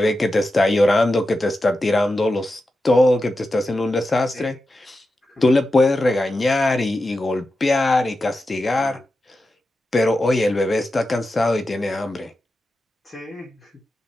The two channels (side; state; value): both; normal; correlation 0.91